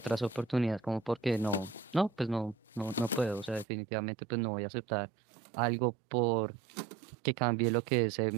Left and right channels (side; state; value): left; drops out; at 3.7 s